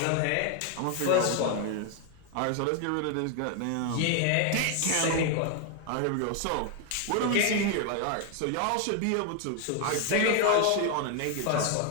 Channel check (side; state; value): both; different; correlation 0.01